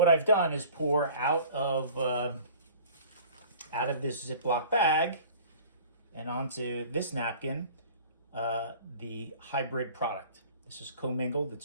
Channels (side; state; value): both; inverted; correlation -0.45